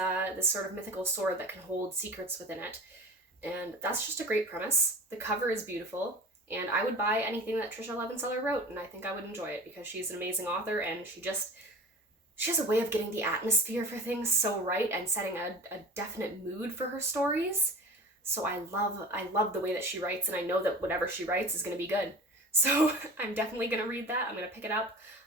sort of mythical sword that can hold secrets within it. And that's just a great premise. The cover is beautiful, and I would buy anything that Tricia Levenseller wrote, and I think I would enjoy it because she's an amazing author, and she has a way of getting the atmosphere for things so right and setting a definite mood for her stories. So I love the way that she writes, and I know that whatever she writes is going to be good. So I'm definitely going to read that. I'm going to pick it up.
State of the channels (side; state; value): both; normal; correlation 0.37